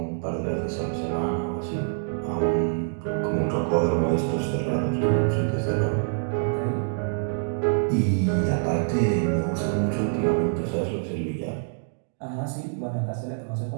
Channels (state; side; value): silent; left; digital silence